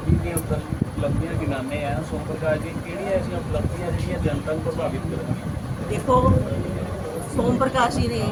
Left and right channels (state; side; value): identical; both; correlation 1.00